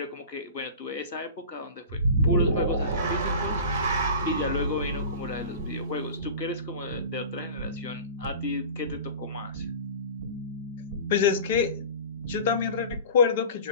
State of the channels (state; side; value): inverted; both; correlation -0.36